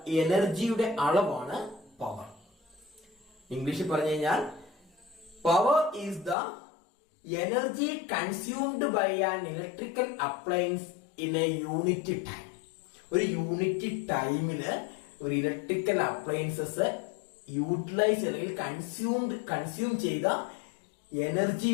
എനർജിയുടെ അളവാണ് പവർ. ഇംഗ്ലീഷിൽ പറഞ്ഞു കഴിഞ്ഞാൽ power is the energy consumed by an electrical appliance in a unit time. ഒരു യൂണിറ്റ് ടൈമില് ഒരു ഇലക്ട്രിക്കൽ അപ്ലയൻസസ് യൂട്ടിലൈസ് അല്ലെങ്കിൽ കൺസ്യൂം ചെയ്ത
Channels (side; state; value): right; drops out; at 6.4 s